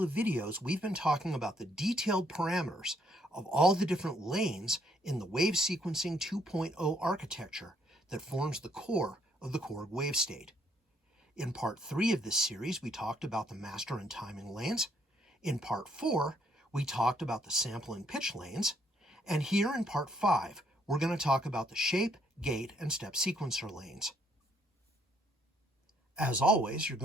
of videos, we've been talking about the detailed parameters of all the different lanes in the Wave Sequencing 2.0 architecture that forms the core of the Korg Wavestate. In part 3 of this series, we talked about the master and timing lanes. In part 4, we talked about the sample and pitch lanes. And here in part 5, we're going to talk about the shape, gate, and step sequencer lanes. As always, you're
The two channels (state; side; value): normal; both; correlation 0.69